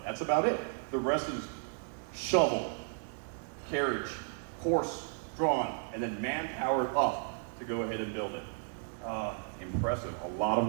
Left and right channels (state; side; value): silent; left; 55 dB below the other